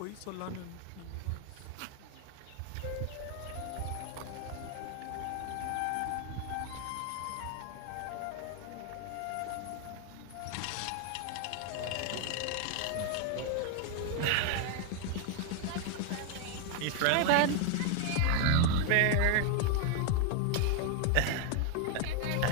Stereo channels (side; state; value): both; different; correlation 0.00